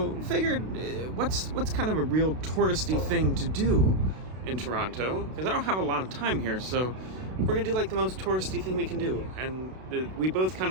figured, what's kind of a real touristy thing to do in Toronto? Because I don't have a lot of time here, so we're gonna do like the most touristy thing we can do. And we both kind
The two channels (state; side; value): late; left; 32 ms